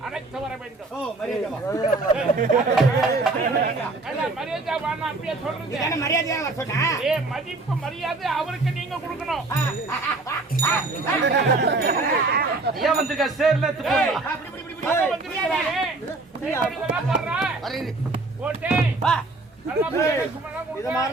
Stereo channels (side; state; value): left; quieter; 3.3 dB